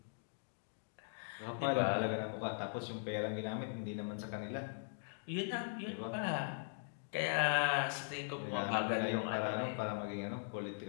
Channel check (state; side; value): silent; right; digital silence